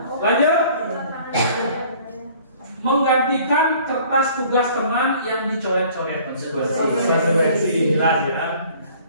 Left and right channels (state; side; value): inverted; both; correlation -0.53